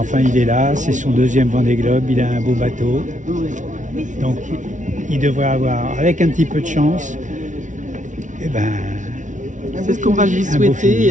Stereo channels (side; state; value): left; late; 0.37 ms